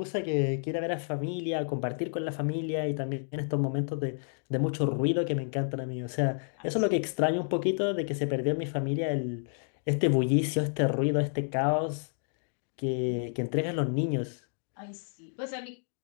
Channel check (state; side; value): silent; right; digital silence